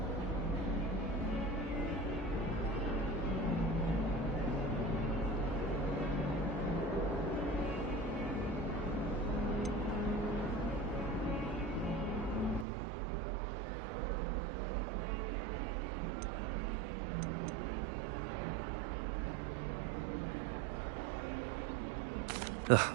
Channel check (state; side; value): drops out; left; at 12.7 s